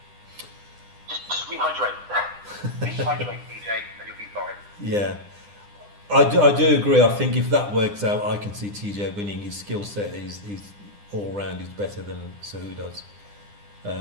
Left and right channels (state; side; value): late; left; 9.9 ms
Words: Just rehydrate. Rehydrate, DJ, and you'll be fine. Yeah. I do agree. I think if that works out, I can see TJ winning. His skill set is all round is better than Cejudo's.